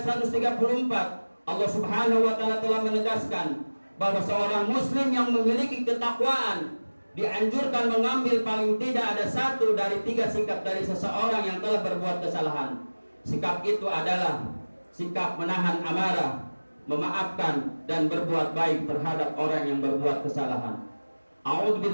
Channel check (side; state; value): both; inverted; correlation -1.00